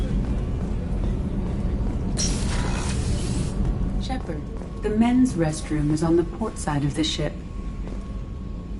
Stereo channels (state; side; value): identical; both; correlation 1.00